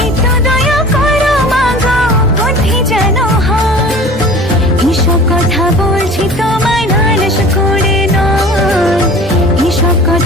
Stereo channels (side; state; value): both; normal; correlation 0.42